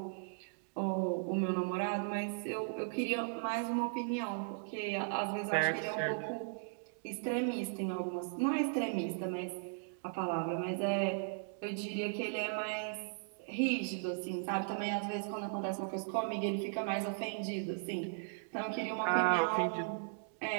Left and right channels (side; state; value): left; silent; digital silence